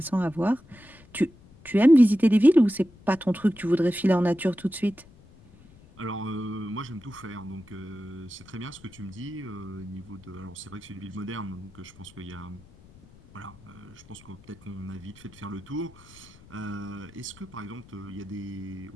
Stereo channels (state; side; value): noise; left; rumble, 23 dB below the sound